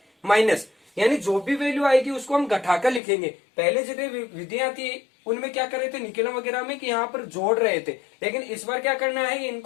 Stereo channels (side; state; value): right; drops out; at 3.0 s